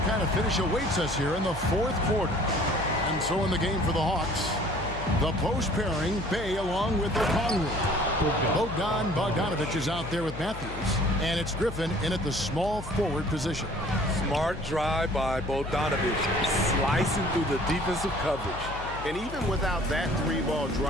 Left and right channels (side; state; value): left; noise; hum, 11 dB below the sound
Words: kind of finish awaits us here in the 4th quarter. And so in the game for the Hawks, the post pairing, Bay along with Okongwu. Bogdan Bogdanovic is out there with Matthews, and it's Griffin in at the small forward position. Smart drive by Bogdanovic, slicing through the defensive coverage. And even without that 3-ball